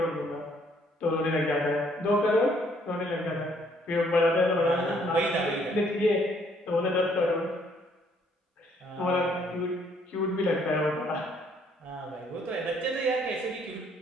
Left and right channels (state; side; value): normal; both; correlation 0.65